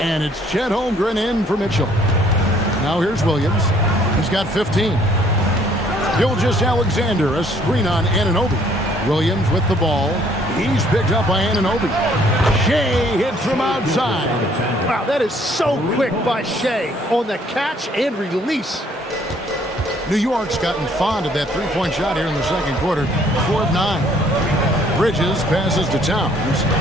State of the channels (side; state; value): both; normal; correlation 0.62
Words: it's Chet Holmgren in for Mitchell. Now here's Williams. He's got 15. Gilgeous-Alexander, a screen on Anunoby. Williams with the ball. He's picked up by Anunoby. Shai hits from outside. Wow, that is so quick by Shai on the catch and release. New York's gotten fond of that three-point shot here in the second quarter. 4 of 9. Bridges passes to Towns.